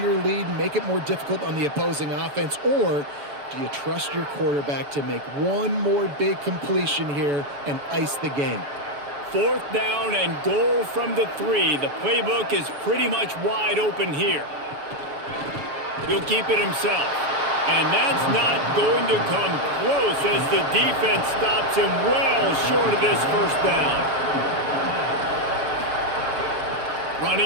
lead, and make it more difficult on the opposing offense, or do you trust your quarterback to make one more big completion here and ice the game? 4th down and goal from the 3. The playbook is pretty much wide open here. He'll keep it himself. And that's not going to come close as the defense stops him well short of this first down.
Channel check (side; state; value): left; late; 7.0 ms